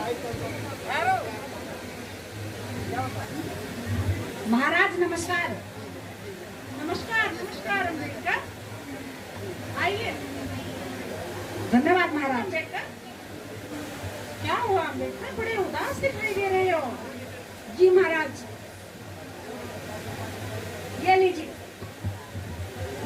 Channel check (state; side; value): identical; both; correlation 1.00